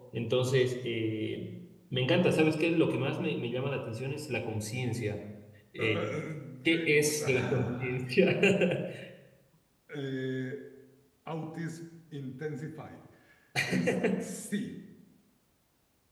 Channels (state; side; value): identical; both; correlation 1.00